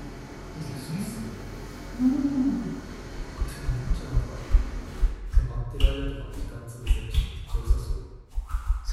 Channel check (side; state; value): both; identical; correlation 1.00